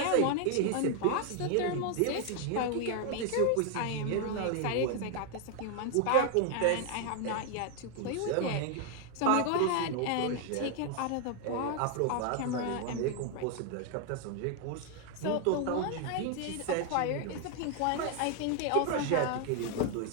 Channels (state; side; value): different; both; correlation 0.00